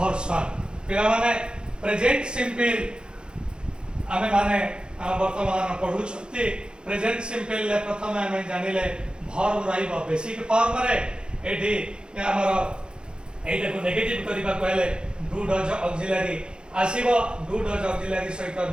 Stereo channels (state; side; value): late; left; 0.050 ms